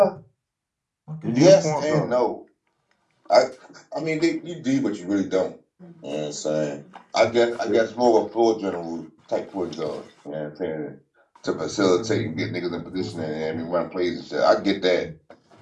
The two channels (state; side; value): identical; both; correlation 1.00